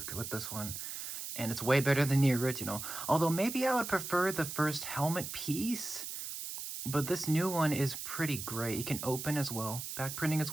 with this one, and it's way better than the original. Although maybe I would prefer the first helmet piece, but this new one is pretty great. He can open as well, back printing as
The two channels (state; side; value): noise; right; hiss, 7 dB below the sound